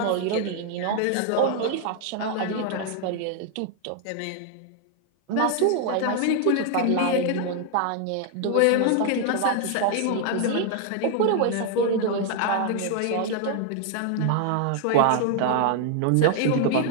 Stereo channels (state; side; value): different; both; correlation 0.00